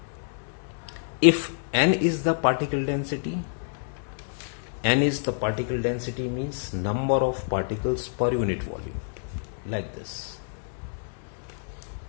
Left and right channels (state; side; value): silent; right; digital silence